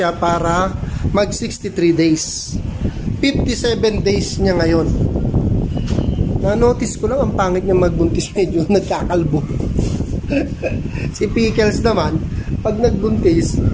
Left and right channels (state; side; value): identical; both; correlation 1.00